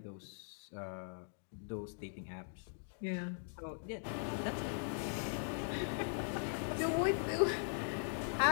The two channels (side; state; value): right; silent; digital silence